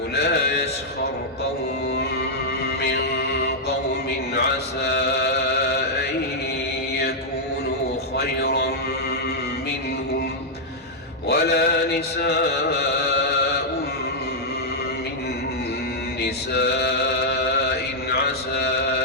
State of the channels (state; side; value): normal; both; correlation -0.06